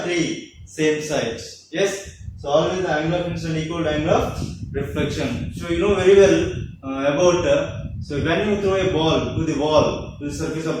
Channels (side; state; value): both; identical; correlation 1.00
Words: three same sides. Yes. So always the angle of incident equal to angle of reflection. So you know very well about. So when you throw a ball to the wall, to the surface